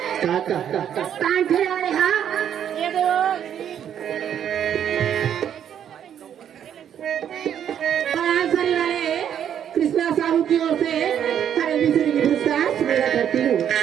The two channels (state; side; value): quieter; left; 9.4 dB